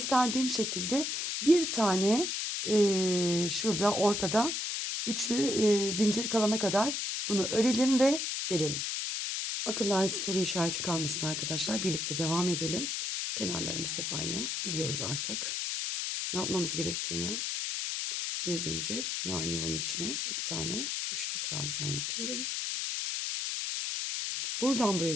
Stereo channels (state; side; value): noise; left; hiss, 2 dB below the sound